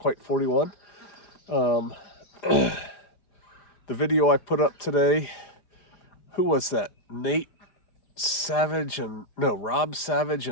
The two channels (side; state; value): right; late; 4.9 ms